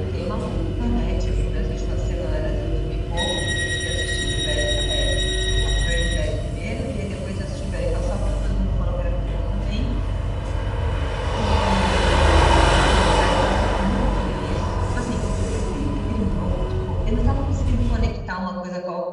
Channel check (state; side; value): identical; both; correlation 1.00